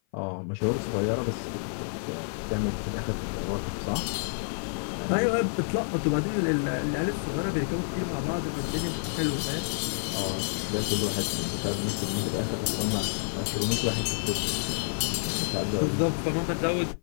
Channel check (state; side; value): silent; right; 55 dB below the other